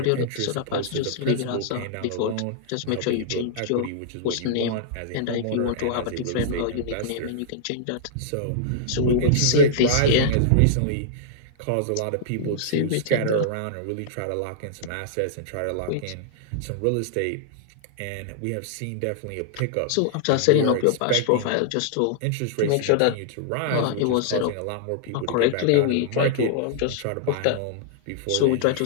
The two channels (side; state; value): both; different; correlation -0.01